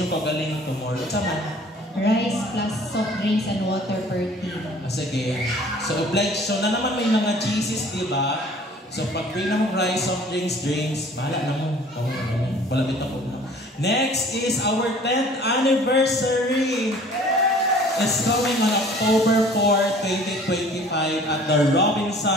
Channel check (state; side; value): normal; both; correlation 0.51